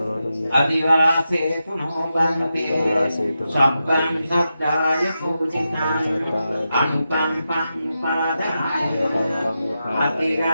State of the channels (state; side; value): inverted; both; correlation -0.89